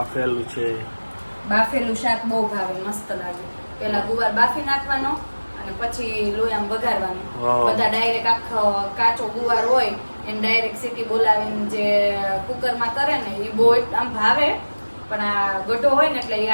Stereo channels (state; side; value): inverted; both; correlation -1.00